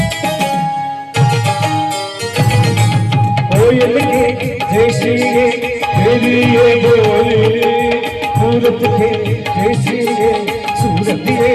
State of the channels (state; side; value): identical; both; correlation 1.00